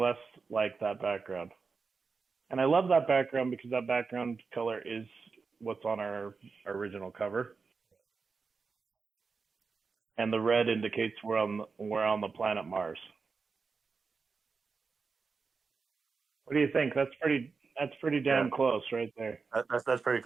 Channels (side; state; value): left; quieter; 4.8 dB